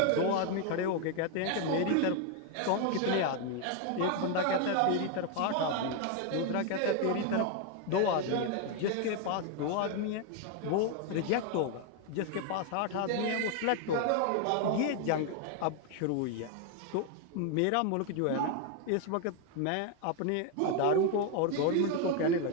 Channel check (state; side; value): different; both; correlation 0.01